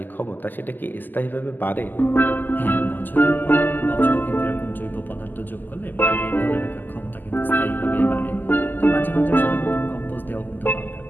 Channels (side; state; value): right; late; 0.088 ms